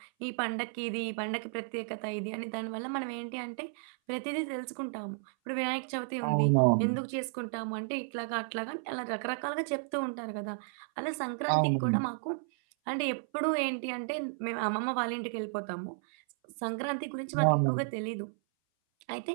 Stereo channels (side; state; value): left; silent; 56 dB below the other